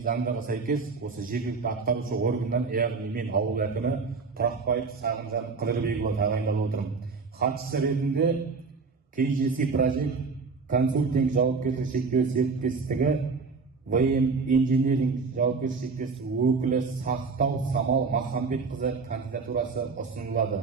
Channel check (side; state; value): left; quieter; 4.6 dB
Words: заңдарға сәйкес осы жергілікті атқарушы органнан, яғни мен ауыл әкімі Тұрақбаев Сағынжан Қыдырбекұлы тағайындалып отырмын. Хатшысы ретінде KGC Project консультинг жауапкершілігі шектеулі серіктестігі ВМ Engineering жауапкершілігі серіктестігі өкілі Сақтау Самал Махамбетқызы кандидатурасы